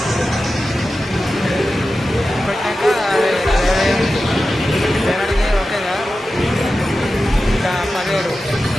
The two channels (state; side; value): normal; both; correlation 0.93